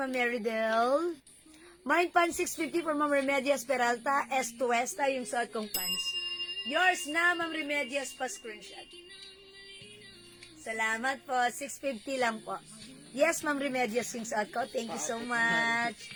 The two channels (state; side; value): identical; both; correlation 1.00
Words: Meridel. Mind Pants 650 for Ma'am Remedias Peralta. S to Westa yung suot kong pants. Yours na, Ma'am Remedias pa screenshot. Salamat po. 650 lang po. Yes, Ma'am Remedias yung suot ko. Thank you so much.